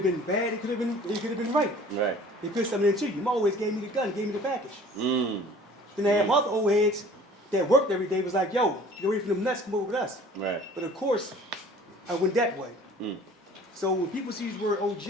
been bad, it could have been right. Right. They put something into you. My old heads gave me the gun, gave me the package. Then I have other old heads that worked every day was like, yo, get away from them nuts, come over with us. Right. But of course, I went that way. Mm. So when people see the word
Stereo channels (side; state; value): both; normal; correlation 0.49